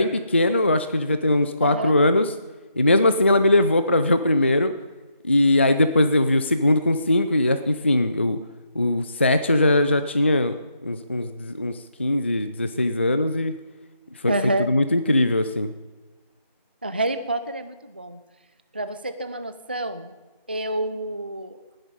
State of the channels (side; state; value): both; inverted; correlation -0.77